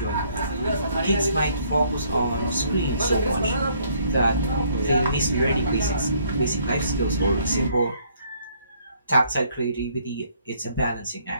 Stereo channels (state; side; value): inverted; both; correlation -0.65